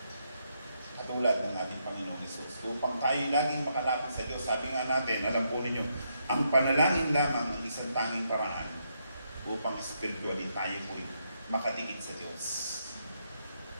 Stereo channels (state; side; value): inverted; both; correlation -0.78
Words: Katulad ng ating Panginoong Hesus. Upang tayo laging makalapit sa Diyos, sabi nga natin, alam po ninyo, ang panalangin lamang ang isang tanging paraan upang spiritually tayo po'y makadikit sa Diyos.